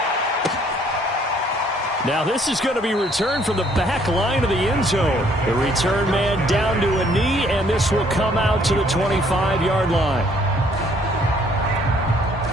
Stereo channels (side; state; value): both; normal; correlation 0.63